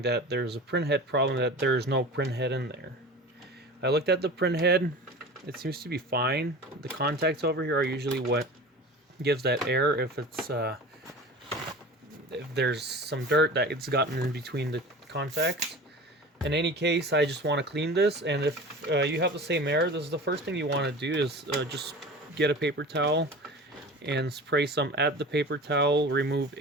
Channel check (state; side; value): normal; both; correlation 0.36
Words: that there's a printhead problem, that there's no printhead in there. I looked at the printhead. It seems to be fine. The contacts over here are usually what gives that error if it's if there's some dirt that it's gotten in between the contacts. In any case, I just want to clean this, and if you have the same error, this is the first thing you want to do is just get a paper towel and spray some at the paper towel. Remove